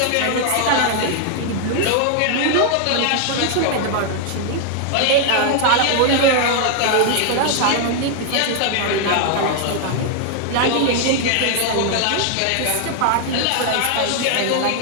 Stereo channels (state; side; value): different; both; correlation 0.00